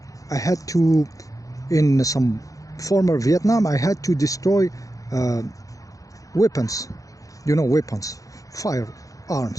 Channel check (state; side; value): late; right; 0.17 ms